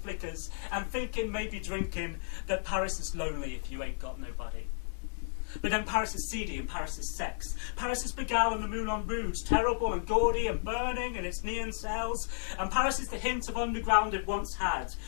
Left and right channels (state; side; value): silent; right; digital silence